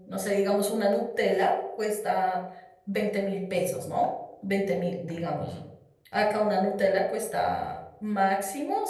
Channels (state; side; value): identical; both; correlation 1.00